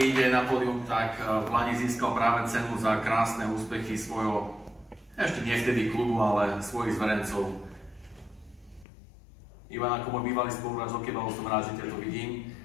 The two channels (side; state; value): right; drops out; at 8.8 s